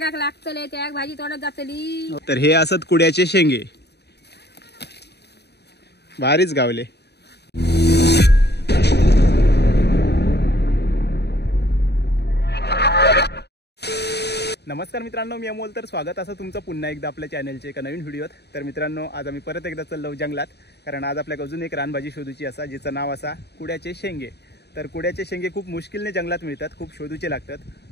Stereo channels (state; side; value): late; right; 0.48 ms